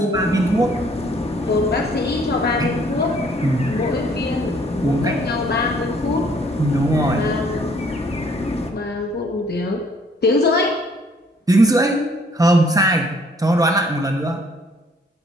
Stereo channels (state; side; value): normal; both; correlation 0.62